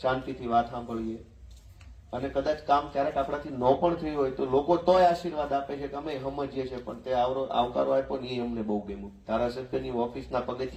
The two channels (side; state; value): both; identical; correlation 1.00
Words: વાત સાંભળીએ. અને કદાચ કામ ક્યારેક આપણાથી ન પણ થયું હોય તો લોકો તોય આશીર્વાદ આપે છે કે અમે સમજીએ છીએ, પણ તે આવકારો આપ્યો ને એ અમને બહુ ગમ્યું. ધારાસભ્યની ઓફિસના